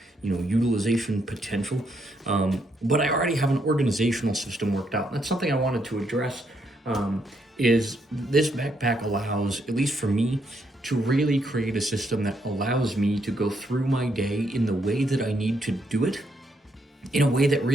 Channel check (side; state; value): both; normal; correlation 0.76